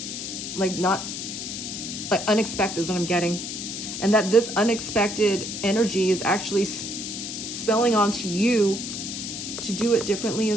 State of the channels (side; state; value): left; noise; hiss, 6 dB below the sound